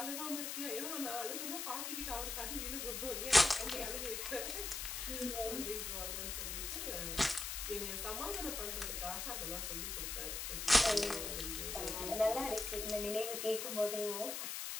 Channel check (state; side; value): noise; left; hiss, 3 dB below the sound